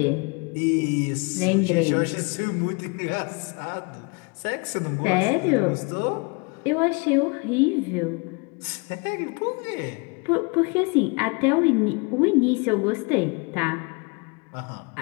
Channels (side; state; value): right; quieter; 31.6 dB